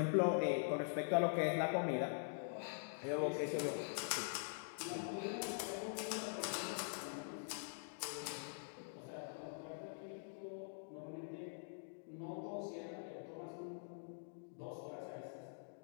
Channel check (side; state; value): right; silent; digital silence